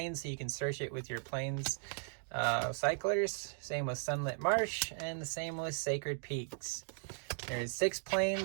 so you can search it with your plains cyclers. Same with Sunlit Marsh, and the same with Sacred Peaks. There's 6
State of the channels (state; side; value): silent; left; digital silence